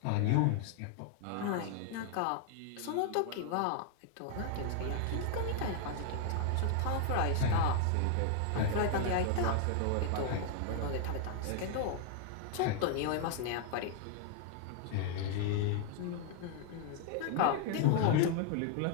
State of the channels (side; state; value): both; different; correlation 0.00